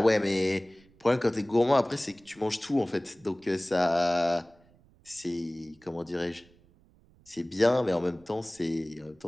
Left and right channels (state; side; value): noise; right; rumble, 29 dB below the sound